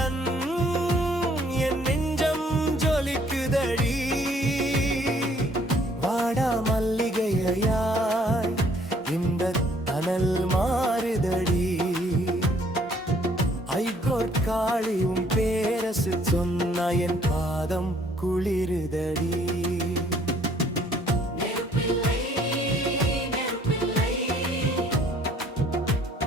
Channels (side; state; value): both; normal; correlation 0.62